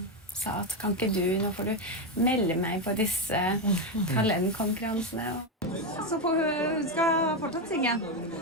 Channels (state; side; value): normal; both; correlation 0.08